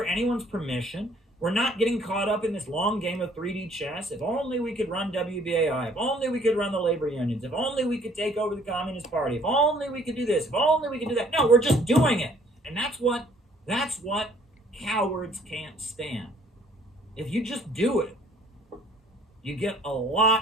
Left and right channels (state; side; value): normal; both; correlation 0.59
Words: anyone's permission. We're not getting caught up in this long game of 3D chess. If only we could run WBAI. If only we could run the labor unions. If only we could take over the Communist Party. If only we could do this. If only we could do that. No, we're just doing it. And that's what cowards can't stand. If you just do it, you get a